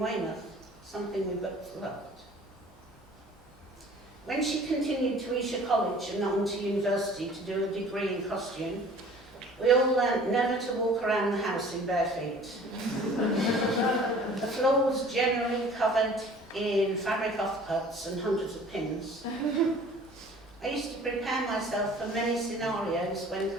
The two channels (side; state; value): both; normal; correlation 0.49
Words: something we both loved. When she continued to Esher College and on to university to do a degree in costume, we all learnt never to walk around the house in bare feet. The floor was generally covered in fabric offcuts and hundreds of pins. I used to prepare myself for many scenarios when